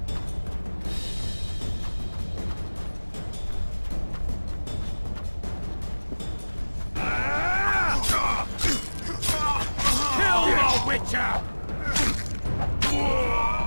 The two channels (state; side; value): inverted; both; correlation -1.00